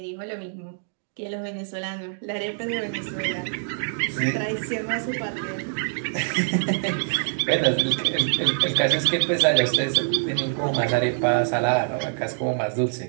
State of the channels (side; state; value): left; silent; digital silence